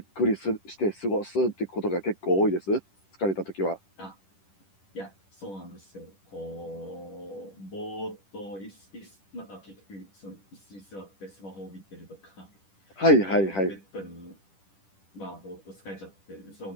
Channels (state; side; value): late; right; 10 ms